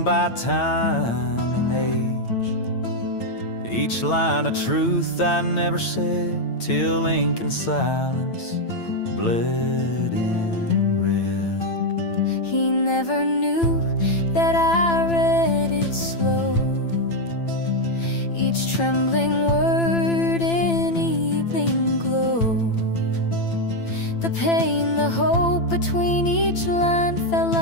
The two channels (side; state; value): right; late; 8.9 ms